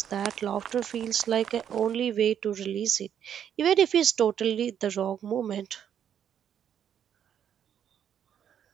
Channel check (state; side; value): quieter; left; 9.1 dB